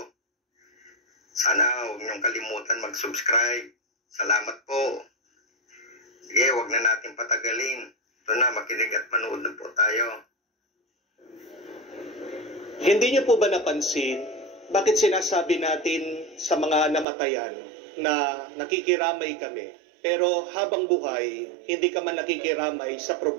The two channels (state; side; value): drops out; left; at 17.1 s